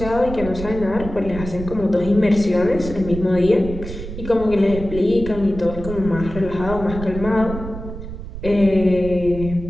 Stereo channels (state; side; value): noise; right; rumble, 9 dB below the sound